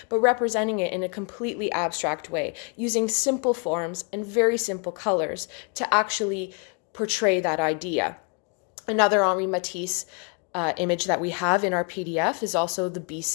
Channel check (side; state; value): right; quieter; 37.3 dB